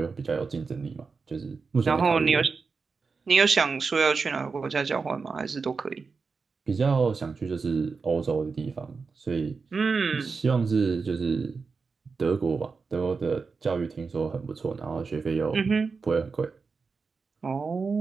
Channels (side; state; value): left; quieter; 4.8 dB